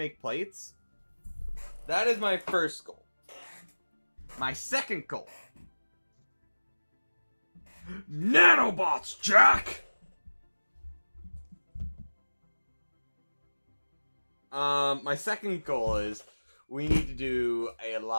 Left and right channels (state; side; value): inverted; both; correlation -1.00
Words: plates. That is my first goal. My second goal. Nanobots, Jack! My second goal is we need to do a